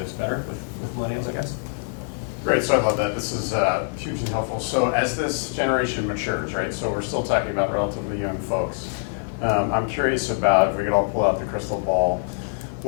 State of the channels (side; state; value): right; silent; 57 dB below the other